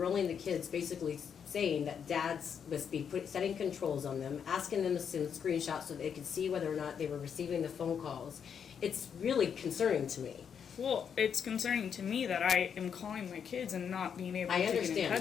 the kids, basically saying that dads must be setting controls on them, asking them to send screenshots so they could see whether or not they were receiving the phone calls. It's really concerning to me. Well, it's concerning to me that I am calling my kids and not being able I to get in understand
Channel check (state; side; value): quieter; right; 7.4 dB